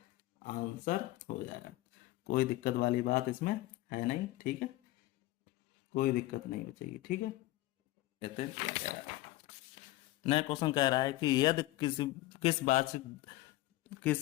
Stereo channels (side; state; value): right; quieter; 17.8 dB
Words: आंसर हो जाएगा। कोई दिक्कत वाली बात इसमें है नहीं। ठीक है, कोई दिक्कत नहीं बचेगी। ठीक है, कहते हैं क्या कह रहा है, नया क्वेश्चन कह रहा है कि यदि